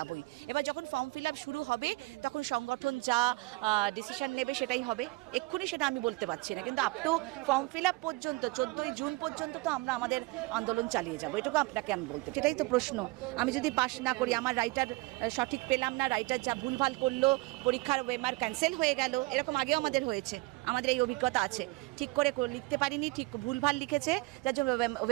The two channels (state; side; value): quieter; left; 23.5 dB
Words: এবার যখন ফর্ম ফিল আপ শুরু হবে তখন সংগঠন যা ডিসিশন নেবে সেটাই হবে। এক্ষুনি সেটা আমি বলতে পারছি না, কিন্তু up to form fill up পর্যন্ত 14ই জুন পর্যন্ত তো আমরা আমাদের আন্দোলন চালিয়ে যাবো। এটুকু আপনাকে আমি বলতে, সেটাই তো প্রশ্ন। আমি যদি পাস না করি, আমার রাইটার সঠিক পেলাম না, রাইটার যা ভুলভাল করলো, পরীক্ষার ওয়েমার ক্যান্সেল হয়ে গেল, এরকম আগেও আমাদের হয়েছে, আমাদের এই অভিজ্ঞতা আছে। ঠিক করে লিখতে পারিনি, ঠিক ভুলভাল লিখেছে, যার জন্য